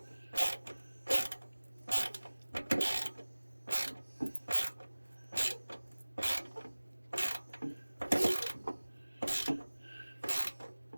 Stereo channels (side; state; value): both; inverted; correlation -1.00